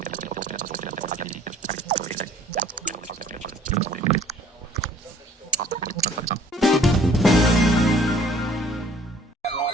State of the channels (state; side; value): normal; both; correlation 0.55